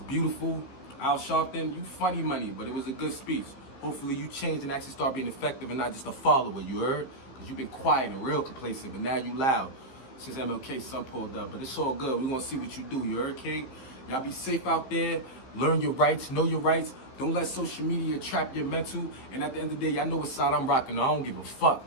Al Sharpton, you funny money, but it was a good speech. Hopefully you change and actually start being effective and not just a follower, you heard? Because you've been quiet and real complacent, but now you loud since MLK's son pulled up. But it's all good. We're going to see what you do, you heard, King? Y'all be safe out there. Learn your rights. Know your rights. Don't let social media trap your mental. And at the end of the day, y'all know what side I'm rocking. I don't give a fuck.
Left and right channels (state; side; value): late; right; 15 ms